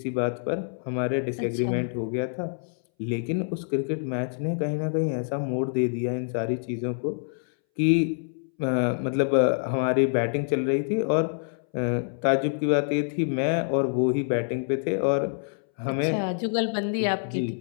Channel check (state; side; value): silent; right; 61 dB below the other